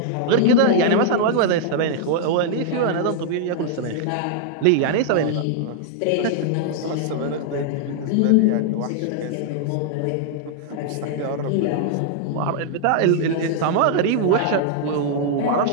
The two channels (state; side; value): different; both; correlation -0.01